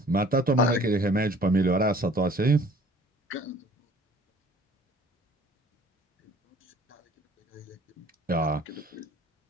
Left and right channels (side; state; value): both; normal; correlation 0.52